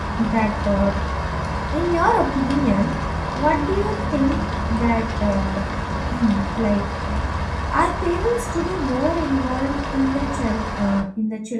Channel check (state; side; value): identical; both; correlation 1.00